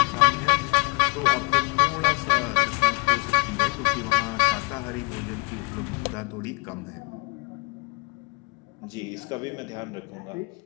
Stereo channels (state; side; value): quieter; right; 31.9 dB